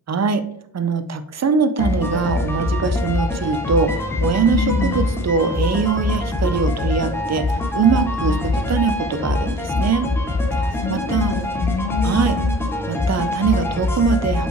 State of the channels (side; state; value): both; normal; correlation 0.42